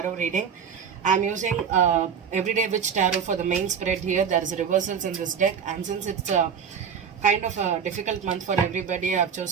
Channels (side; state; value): left; quieter; 7.0 dB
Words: reading. I'm using Everyday Witch Tarot for the main spread here. There is reversals in this deck, and since it's kind of a difficult month for everybody, I've